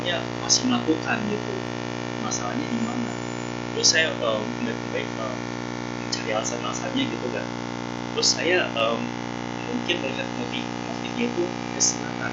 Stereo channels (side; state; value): both; identical; correlation 1.00